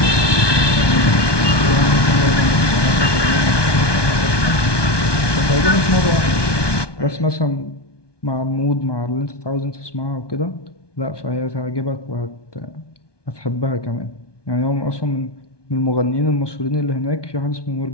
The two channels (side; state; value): right; late; 1.2 ms